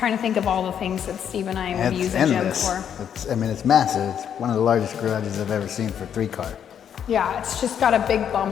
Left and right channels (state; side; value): quieter; right; 8.7 dB